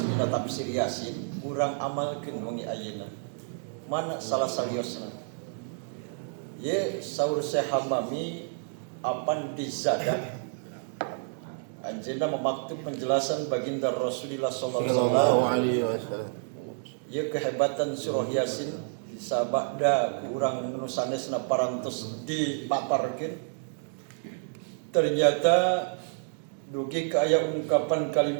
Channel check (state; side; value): silent; left; digital silence